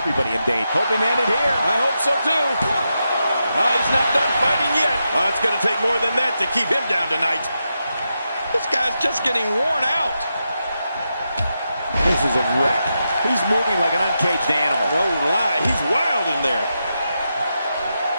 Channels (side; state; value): both; inverted; correlation -0.87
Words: in danger. Hope he landed here. I hope so, too. Oh, he's not done fighting yet. Oh, it's going to take more than that to keep him down tonight. This guy's just getting worn out. This is a wreck. He's moving like an uncaged animal. No lie, he's wild in there.